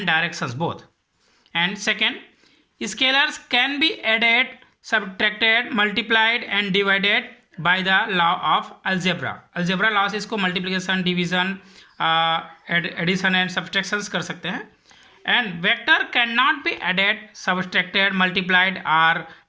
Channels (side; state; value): both; identical; correlation 1.00